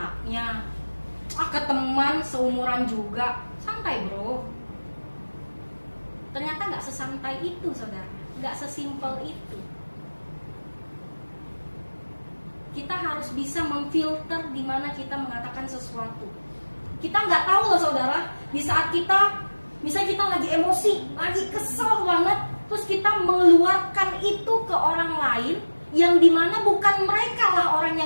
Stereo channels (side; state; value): both; inverted; correlation -1.00